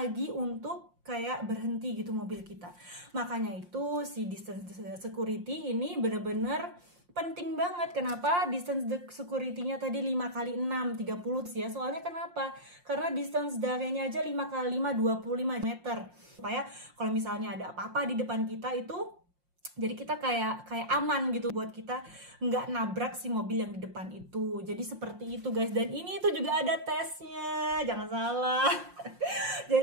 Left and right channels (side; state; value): left; late; 5.6 ms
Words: untuk kayak berhenti gitu mobil kita. Makanya itu si distance security ini bener-bener penting banget. Kenapa distance security-nya tadi 5 kali 6 30 ya? Soalnya kenapa? Karena distance d'arrêt-nya aja 5 kali 5 25 meter. Supaya kalau misalnya ada apa-apa di depan kita itu, jadi kita kayak aman gitu buat kita nggak nabrak si mobil yang di depan itu. Jadi seperti itu guys. Dan ini itu juga ada tesnya, jangan salah.